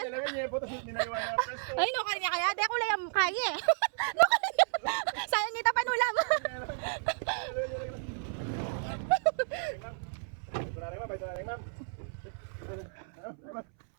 Ay, no, kanya kaya. Di ako layang kaya eh. No, kanya. Sayang nita panulam.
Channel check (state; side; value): silent; left; 56 dB below the other